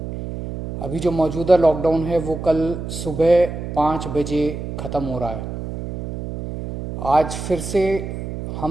अभी जो मौजूदा लॉकडाउन है वो कल सुबह 5 बजे ख़त्म हो रहा है। आज फिर से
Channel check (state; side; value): noise; right; hum, 7 dB below the sound